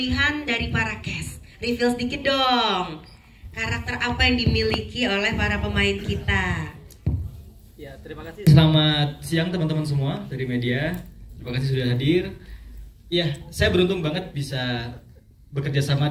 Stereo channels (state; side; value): identical; both; correlation 1.00